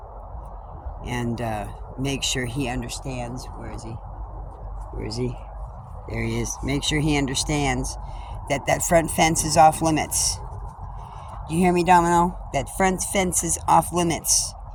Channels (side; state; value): both; identical; correlation 1.00